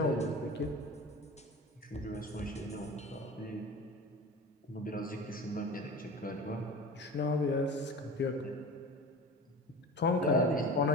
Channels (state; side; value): normal; both; correlation 0.35